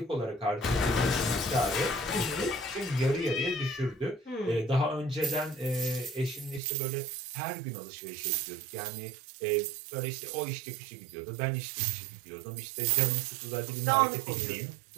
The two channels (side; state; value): left; drops out; at 6.6 s